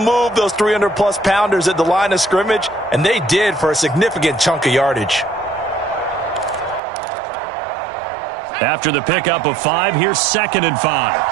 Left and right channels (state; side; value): drops out; left; at 6.8 s